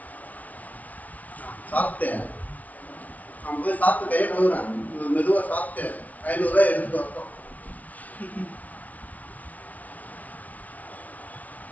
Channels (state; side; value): late; right; 0.072 ms